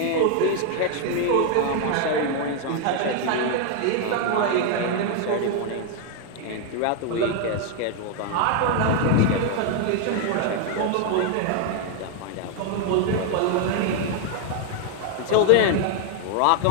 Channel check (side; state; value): both; different; correlation 0.00